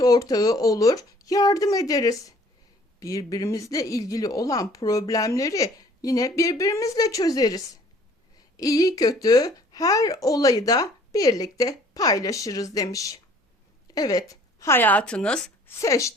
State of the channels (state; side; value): normal; both; correlation 0.55